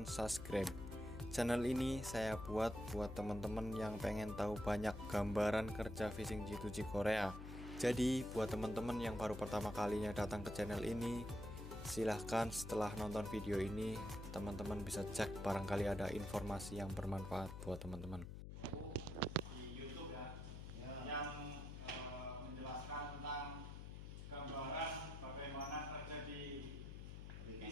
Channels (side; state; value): left; noise; hum, 9 dB below the sound